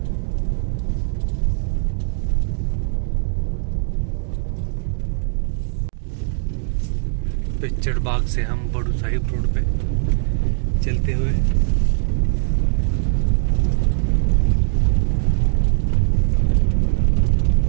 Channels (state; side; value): silent; left; digital silence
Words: पिक्चर बाग से हम बड़ू साहिब रोड पे चलते हुए